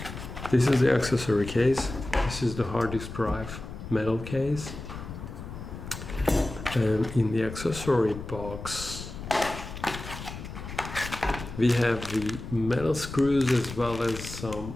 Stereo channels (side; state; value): left; noise; rumble, 10 dB below the sound